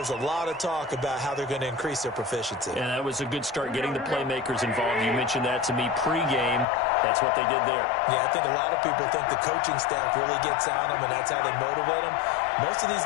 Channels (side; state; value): right; drops out; at 6.7 s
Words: a lot of talk about how they're going to increase their proficiency. And that was a good start getting the playmakers involved. You mentioned that to me pregame. That's what they did there. Yeah, I think a lot of people think the coaching staff really gets on them, and that's how they motivate them. Most of these